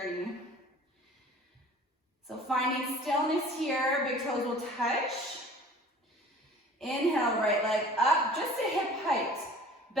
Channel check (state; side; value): normal; both; correlation 0.46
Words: So finding stillness here, big toes will touch. Inhale, right leg up, just to hip height.